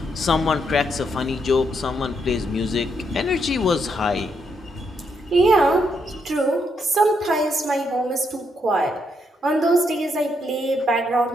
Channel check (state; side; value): normal; both; correlation 0.77